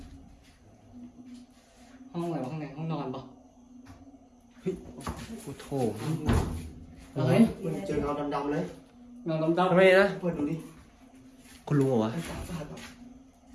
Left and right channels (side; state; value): both; identical; correlation 1.00